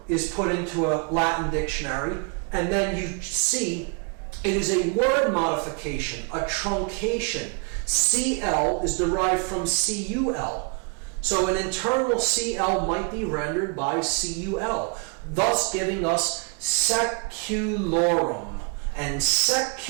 is put into a Latin dictionary, and then you see it is a word modification, a truncation. CL is derived from CUL. So an internal CL might be rendered by CUL, thus giving us seculorum. And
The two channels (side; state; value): left; quieter; 35.5 dB